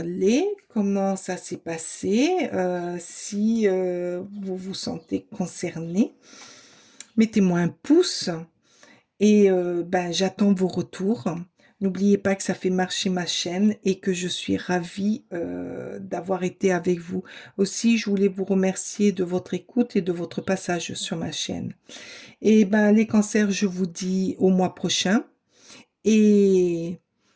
comment ça s'est passé, si vous vous sentez concerné. Mettez-moi un pouce et ben, j'attends vos retours. N'oubliez pas que ça fait marcher ma chaîne et que je suis ravie d'avoir été avec vous. Aussi, je voulais vous remercier de votre écoute et de votre passage sur ma chaîne. Et ben, les cancers, je vous dis au mois prochain et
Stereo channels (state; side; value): identical; both; correlation 1.00